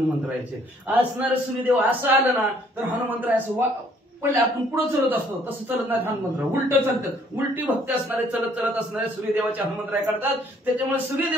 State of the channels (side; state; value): both; normal; correlation 0.62